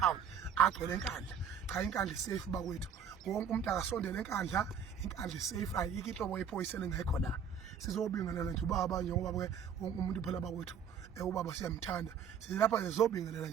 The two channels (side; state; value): left; quieter; 7.3 dB